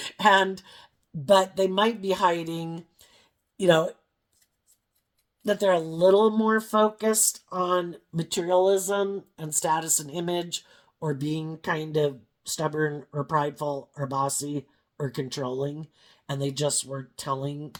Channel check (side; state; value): both; identical; correlation 1.00